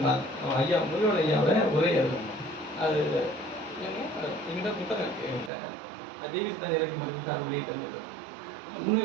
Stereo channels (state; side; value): drops out; left; at 5.5 s